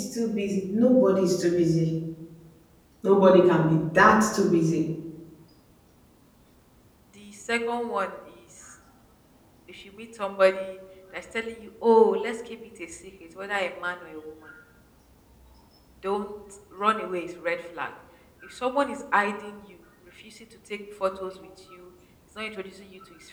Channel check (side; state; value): both; identical; correlation 1.00